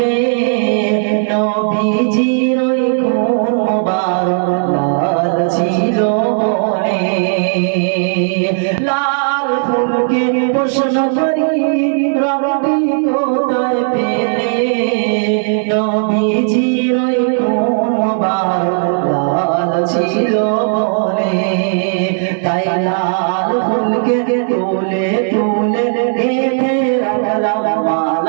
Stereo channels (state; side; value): silent; left; digital silence